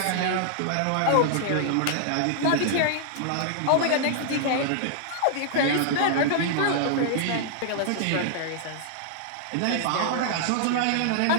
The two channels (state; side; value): different; both; correlation -0.01